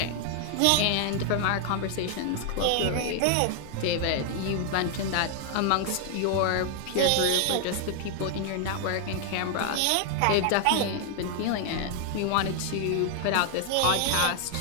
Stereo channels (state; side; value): different; both; correlation 0.00